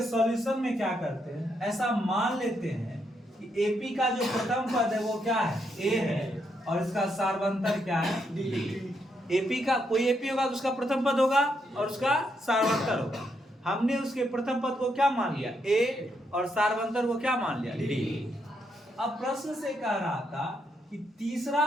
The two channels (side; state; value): both; normal; correlation 0.78